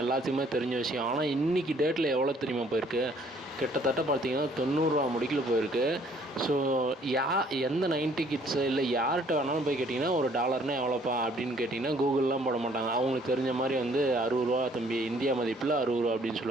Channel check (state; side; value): normal; both; correlation 0.61